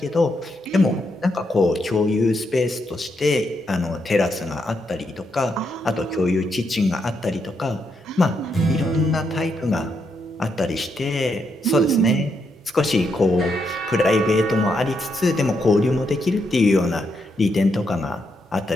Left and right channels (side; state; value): both; normal; correlation 0.80